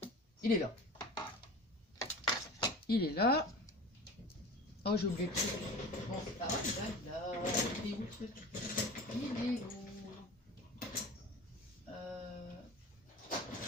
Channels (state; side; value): normal; both; correlation 0.36